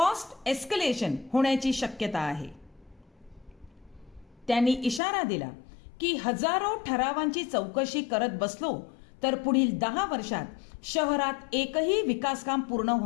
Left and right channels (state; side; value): drops out; right; at 5.0 s